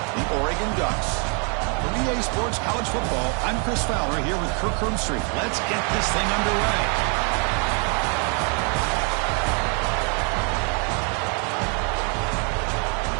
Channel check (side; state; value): left; quieter; 37.7 dB